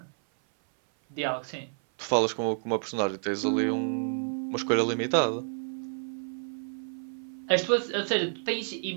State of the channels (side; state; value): left; silent; 56 dB below the other